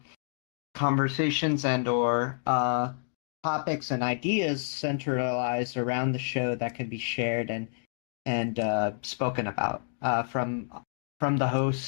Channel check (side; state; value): right; silent; digital silence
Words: conversations and or topics and ideas centralized around the show that can be shared and spoken about from the